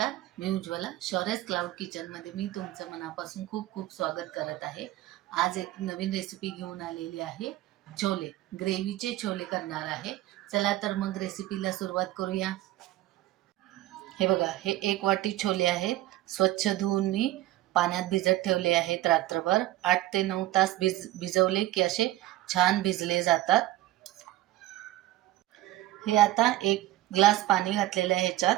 मी उज्ज्वला. शौर्यस क्लाउड किचनमध्ये मी तुमचं मनापासून खूप खूप स्वागत करत आहे. आज एक नवीन रेसिपी घेऊन आलेली आहे. छोले, ग्रेव्हीचे छोले करणार आहे. चला तर मग रेसिपीला सुरुवात करूया. हे बघा, हे 1 वाटी छोले आहेत. स्वच्छ धुवून मी पाण्यात भिजत ठेवले आहेत रात्रभर. 8 ते 9 तास भिजवले की असे छान भिजले जातात. हे आता 1 ग्लास पाणी घातलेलं आहे ह्याच्यात.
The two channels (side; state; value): left; quieter; 15.9 dB